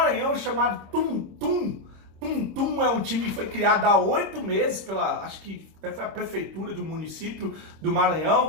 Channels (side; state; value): left; late; 26 ms